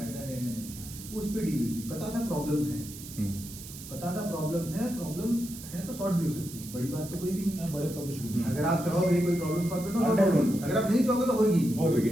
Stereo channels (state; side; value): noise; right; hiss, 13 dB below the sound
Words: है या नहीं, उस पर डील हुई थी। पता था प्रॉब्लम्स हैं, पता था प्रॉब्लम्स हैं, प्रॉब्लम है तो सॉर्ट भी हो सकती है, बड़ी बात तो कोई भी नहीं है, बड़े तो कुछ भी नहीं। अगर आप चाहोगे कोई प्रॉब्लम सॉल्व करना सॉल्व होगी, अगर आप नहीं चाहोगे तो होगी